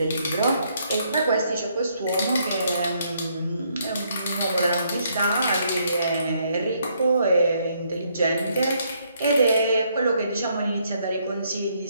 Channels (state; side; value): inverted; both; correlation -0.71